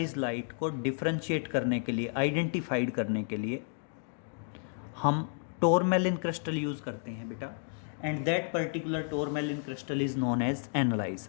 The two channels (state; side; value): silent; right; 57 dB below the other